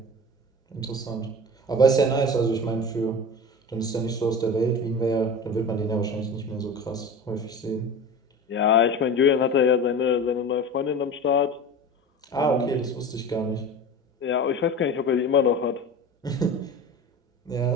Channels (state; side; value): normal; both; correlation 0.33